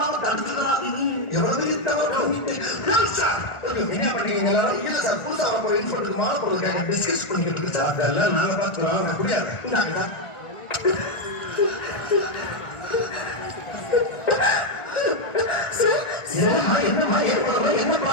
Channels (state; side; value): late; right; 1.4 ms